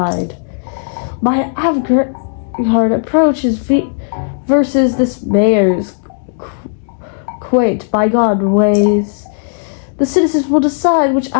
My avant-garde approach is versus this mayor's quaint, bygone ways. The citizens will decide which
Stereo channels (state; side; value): silent; right; digital silence